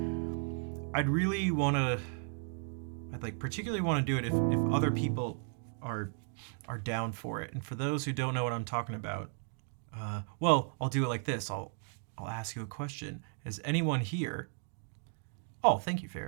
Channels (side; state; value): left; silent; 54 dB below the other